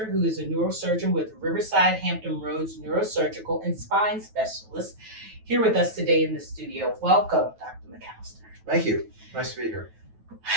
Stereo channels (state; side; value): late; left; 9.2 ms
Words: who is a neurosurgeon with Riverside Hampton Roads Neurosurgical and Spine Specialist, here with us today in the studio. Welcome, Dr. McAllister. Thank you. Nice to be here.